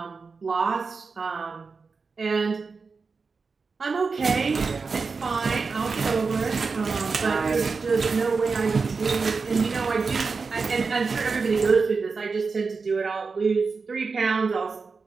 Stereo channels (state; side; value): quieter; left; 4.7 dB